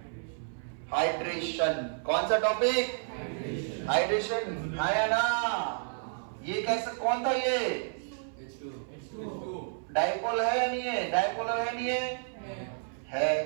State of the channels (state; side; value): silent; left; 57 dB below the other